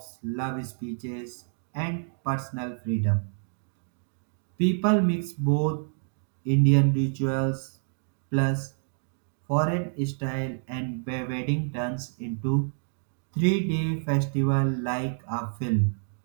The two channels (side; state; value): left; silent; digital silence